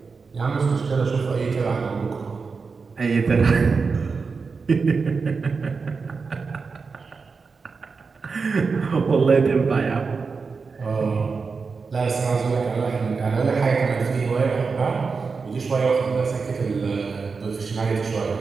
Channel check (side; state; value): left; quieter; 4.8 dB